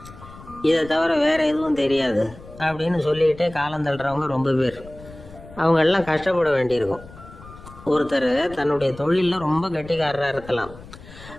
இதை தவிர வேற எதுவும் தெரியாது அப்படின்னு சொல்லிக்கிட்டே காலம் தள்ளுறவங்க ரொம்ப பேர். அவங்க எல்லாம் கஷ்டப்பட வேண்டியிருக்கும். ஒருத்தர் தன்னுடைய தொழிலில் ரொம்ப கெட்டிக்காரராக இருக்கலாம்.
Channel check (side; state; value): left; noise; rumble, 18 dB below the sound